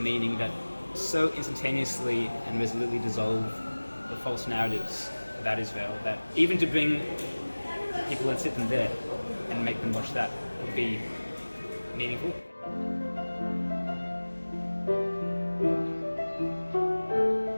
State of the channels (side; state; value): both; inverted; correlation -1.00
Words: that so instantaneously and resolutely dissolve the false narratives about Israel that even to bring people and sit them there and make them watch that would be meaningful.